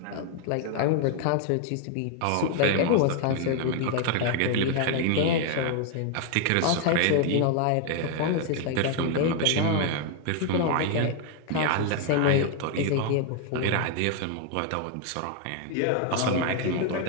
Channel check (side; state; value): both; different; correlation 0.00